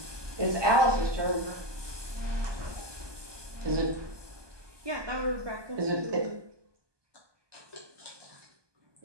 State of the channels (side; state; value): left; late; 1.2 ms